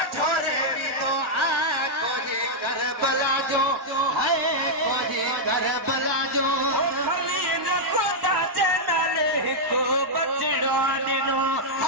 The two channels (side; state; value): both; normal; correlation -0.05